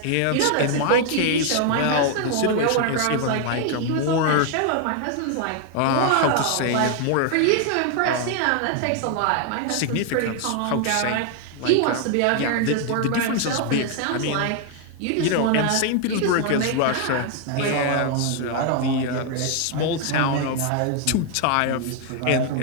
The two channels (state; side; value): different; both; correlation 0.00